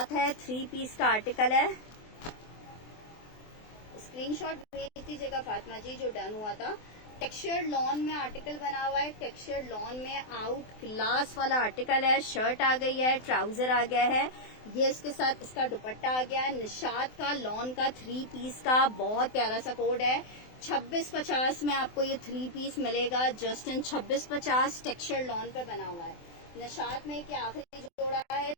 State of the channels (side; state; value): right; late; 24 ms